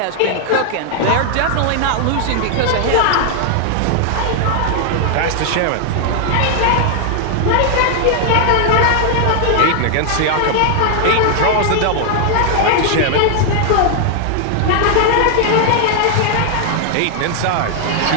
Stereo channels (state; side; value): different; both; correlation 0.00